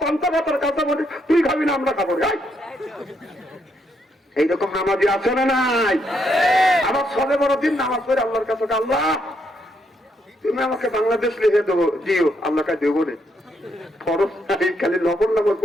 পান্তা ভাতার কাঁচামরিচ তুই খাবি না, আমরা খাবো। এইরকম নামাজি আছে না নাই? আবার সবে বড় দিন নামাজ পড়ে আল্লাহর কাছে, আল্লাহ তুমি আমাকে বাংলাদেশ লিখে দেবো, দিও, আল্লাহ কাছে দেবো না, খরচ নাই, খালি লবণ লবণ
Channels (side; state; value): both; normal; correlation 0.76